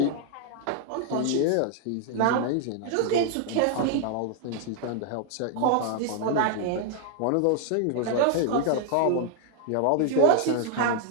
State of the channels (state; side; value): different; both; correlation 0.00